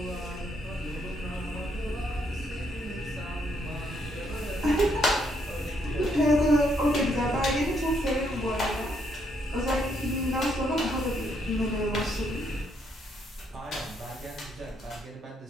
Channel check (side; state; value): both; normal; correlation 0.73